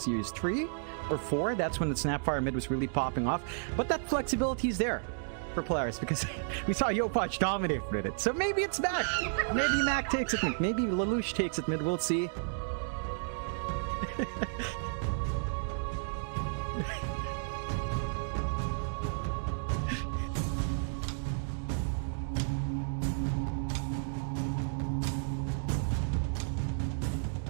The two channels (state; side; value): silent; left; digital silence